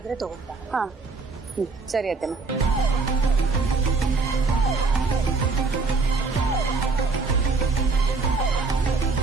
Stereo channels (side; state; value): left; quieter; 4.1 dB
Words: ತಗೊಂಡ. ಹಾ, ಸರಿ ಅತ್ತೆಮ್ಮ.